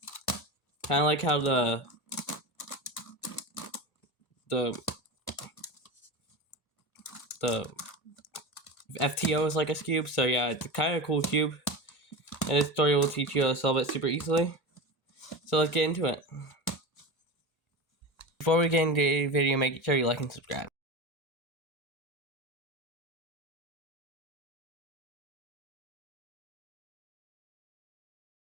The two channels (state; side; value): normal; both; correlation 0.25